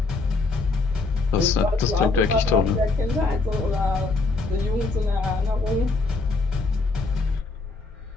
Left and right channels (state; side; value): quieter; right; 3.7 dB